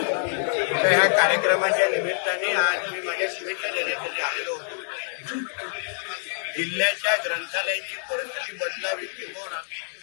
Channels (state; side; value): silent; right; 61 dB below the other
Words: ह्या कार्यक्रमाच्या निमित्ताने आज मी माझ्या शुभेच्छा देण्यासाठी आलेलो होतो। जिल्ह्याच्या ग्रंथालयाची परिस्थिती बदलावी किंवा